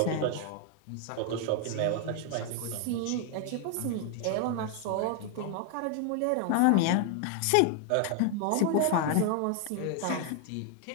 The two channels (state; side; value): different; both; correlation 0.00